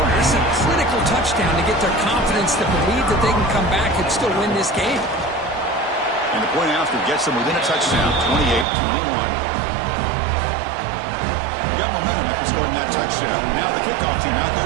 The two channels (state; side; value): drops out; left; at 8.7 s